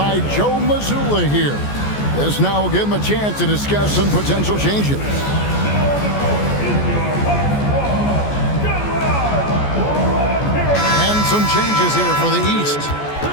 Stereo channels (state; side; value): late; right; 14 ms